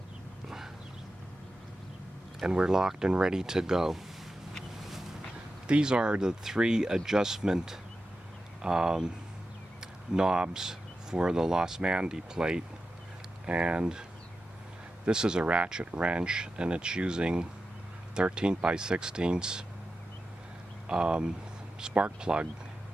And we're locked and ready to go. These are the 3 adjustment knobs for the Los Mandy plate. And this is a ratchet wrench, and it's using 13 by 16 spark plug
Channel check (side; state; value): both; normal; correlation 0.91